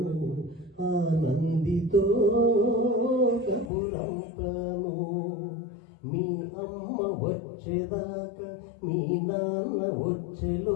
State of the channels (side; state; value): right; drops out; at 3.7 s